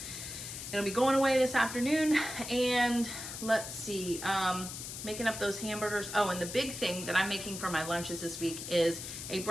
It'll be going away this afternoon. And let's see, making up those hamburgers. Oh, and the big thing that I'm making for my lunches this week is a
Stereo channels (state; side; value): noise; left; hiss, 8 dB below the sound